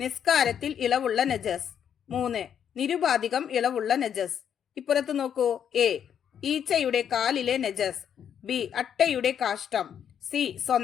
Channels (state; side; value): quieter; right; 8.6 dB